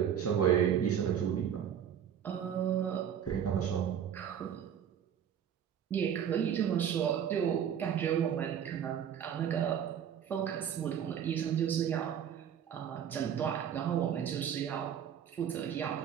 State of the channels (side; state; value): left; quieter; 8.9 dB